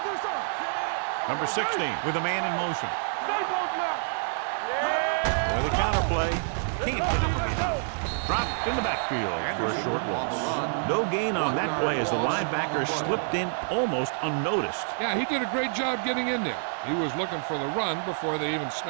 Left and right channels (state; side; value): silent; left; digital silence